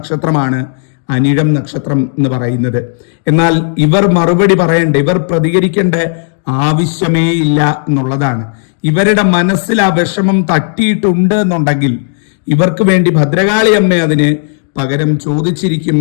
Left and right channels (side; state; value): right; silent; digital silence